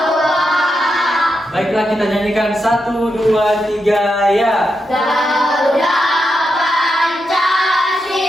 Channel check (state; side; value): normal; both; correlation 0.85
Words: Baiklah, kita nyanyikan 1, 2, 3, ya. Garuda